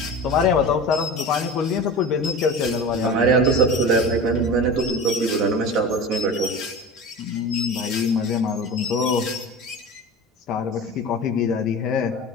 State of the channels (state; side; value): normal; both; correlation 0.32